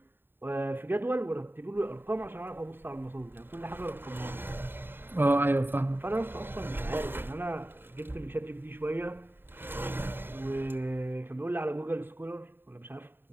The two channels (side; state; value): left; late; 0.099 ms